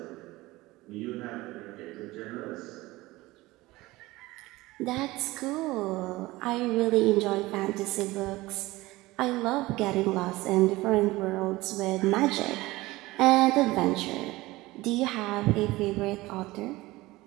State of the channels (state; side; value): quieter; left; 19.5 dB